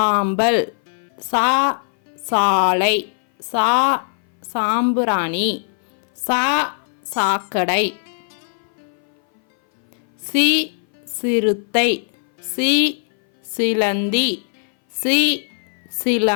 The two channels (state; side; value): silent; right; 60 dB below the other